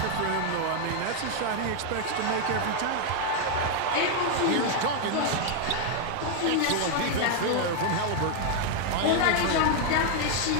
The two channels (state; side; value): different; both; correlation 0.00